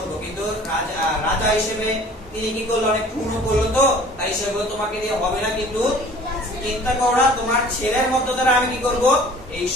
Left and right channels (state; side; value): normal; both; correlation 0.49